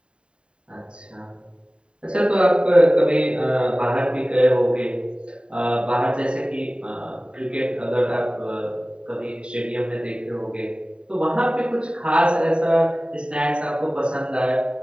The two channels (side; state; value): left; late; 0.053 ms